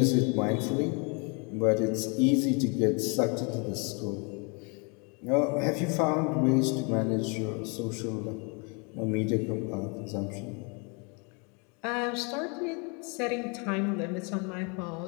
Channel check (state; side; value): quieter; right; 33.4 dB